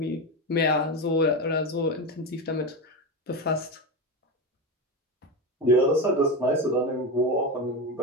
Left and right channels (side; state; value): both; normal; correlation 0.17